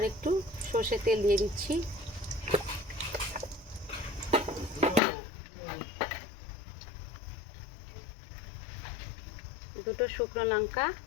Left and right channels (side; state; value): right; drops out; at 5.0 s